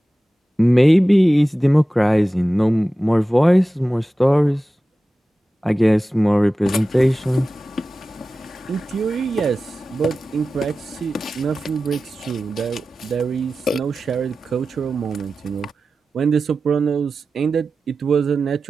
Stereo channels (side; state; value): both; normal; correlation 0.95